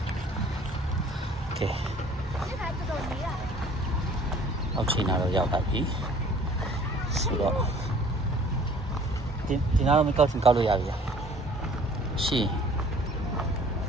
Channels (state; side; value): normal; both; correlation 0.52